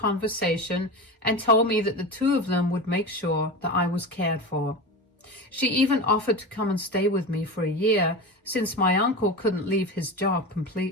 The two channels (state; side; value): normal; both; correlation 0.25